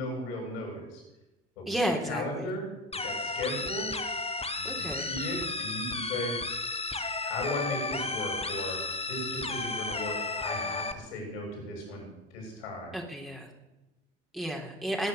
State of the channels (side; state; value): both; normal; correlation 0.19